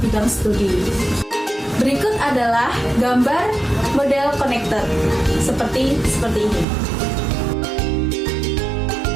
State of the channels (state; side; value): drops out; left; at 6.7 s